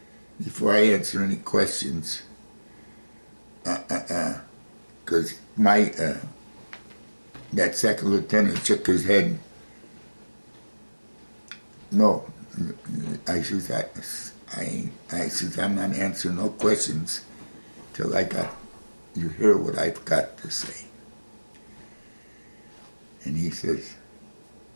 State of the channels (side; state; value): both; inverted; correlation -1.00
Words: before I answer any questions, because that second lieutenant shook his head. No, I says, I says, I'm not answering no questions till you hear what I've got to say. And he says,